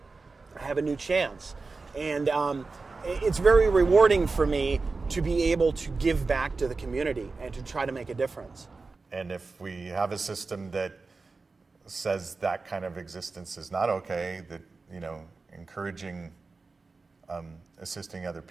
I have a new chance. And it's very rewarding for me to be able to give back to the community and to try to make a difference. And if we have a system that says that kind of existence is not okay, that, encouraging assisting other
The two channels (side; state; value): left; quieter; 4.0 dB